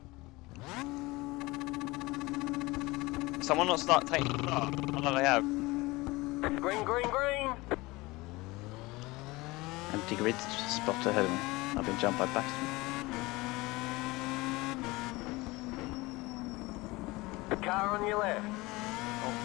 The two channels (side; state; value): right; quieter; 21.9 dB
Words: Someone not start taking the start. I know they have. Green, green, green. Empty grid spot ahead of me. I've been jumped by Bathurst. The car on your left. Oh,